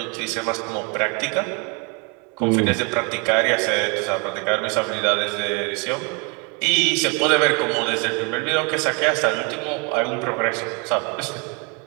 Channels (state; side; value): quieter; left; 33.4 dB